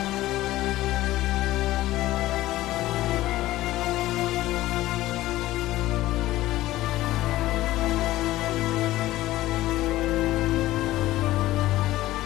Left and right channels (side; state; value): right; quieter; 16.2 dB